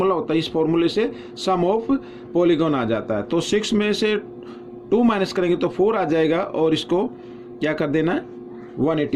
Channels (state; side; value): identical; both; correlation 1.00